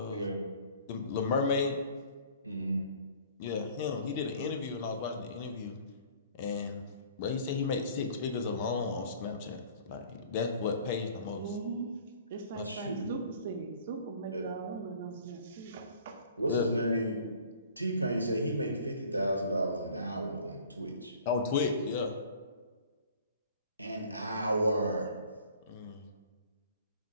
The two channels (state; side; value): inverted; both; correlation -0.51